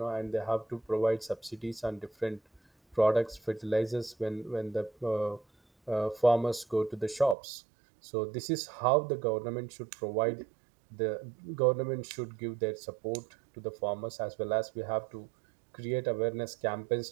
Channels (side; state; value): left; drops out; at 7.4 s